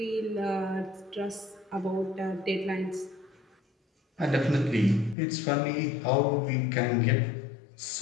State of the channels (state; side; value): drops out; right; at 5.2 s